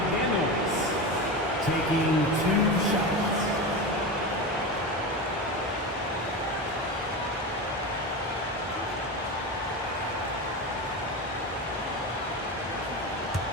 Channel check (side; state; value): both; normal; correlation 0.22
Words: taking 2 shots.